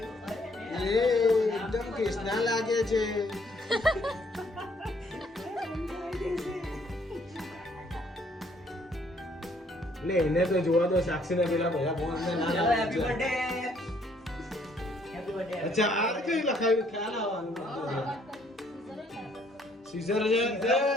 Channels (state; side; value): normal; both; correlation 0.65